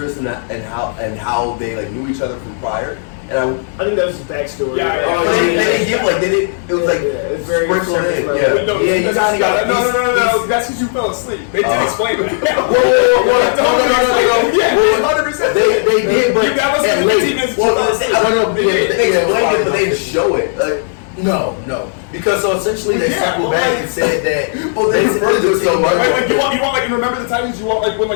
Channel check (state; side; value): silent; right; digital silence